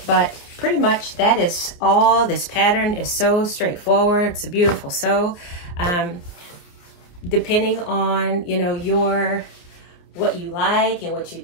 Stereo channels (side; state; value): right; late; 29 ms